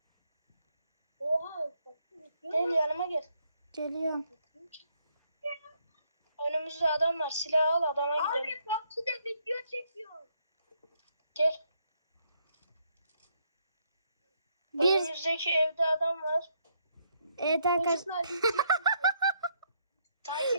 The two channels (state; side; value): inverted; both; correlation -0.74